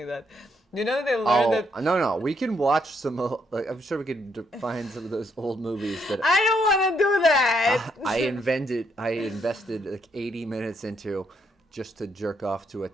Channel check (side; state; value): both; normal; correlation 0.74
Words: that. You know they learned that. No, we can watch some. I'm sure we could find some of those old movies that I don't want to do that. I invested like 80 minutes into just to jerk off to a